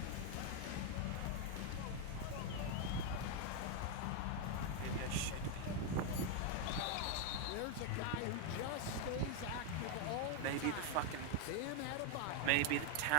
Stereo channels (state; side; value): different; both; correlation 0.01